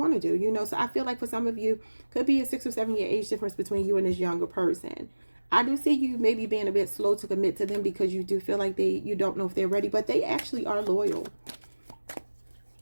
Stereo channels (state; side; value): inverted; both; correlation -1.00